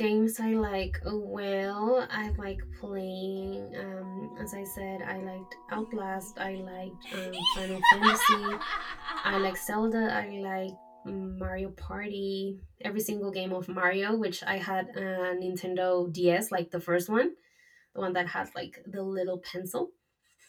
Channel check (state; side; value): identical; both; correlation 1.00